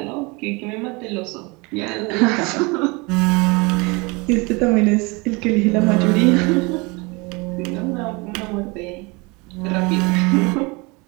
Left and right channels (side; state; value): left; quieter; 27.0 dB